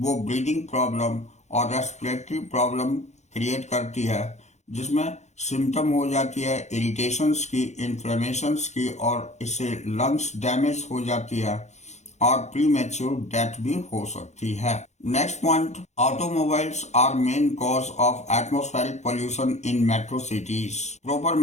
ब्रीदिंग प्रॉब्लम और रेस्पिरेटरी प्रॉब्लम क्रिएट करती है, जिसमें सिम्टम हो जाती है इरिटेशंस की, इन्फ्लेमेशंस की और इससे लंग्स डैमेज हो जाती है और प्रीमैच्योर डेथ भी हो सकती है। Next point, automobiles are main cause of atmospheric pollution in metro cities. Proper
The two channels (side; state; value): right; late; 0.33 ms